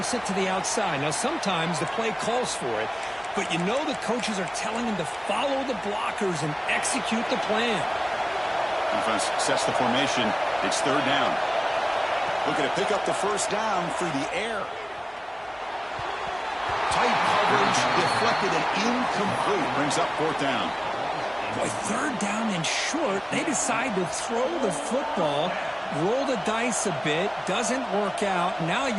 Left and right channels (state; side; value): identical; both; correlation 1.00